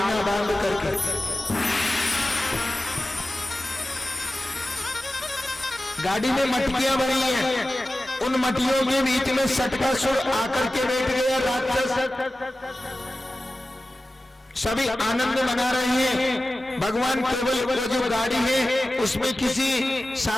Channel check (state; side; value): normal; both; correlation 0.95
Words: बांध करके। गाड़ी में मटकियां बनी है, उन मटियों के बीच में सटकासुर आकर के बैठ गया राक्षस। सभी आनंद मना रहे हैं। भगवान केवल वो जो गाड़ी है उसमें किसी